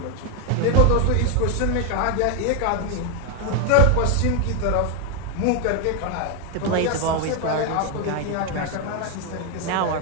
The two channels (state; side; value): different; both; correlation 0.01